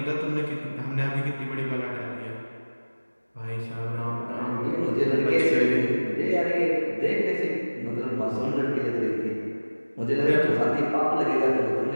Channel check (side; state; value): both; inverted; correlation -1.00